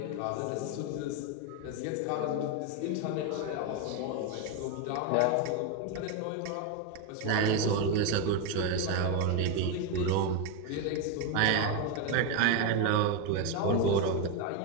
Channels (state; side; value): different; both; correlation 0.02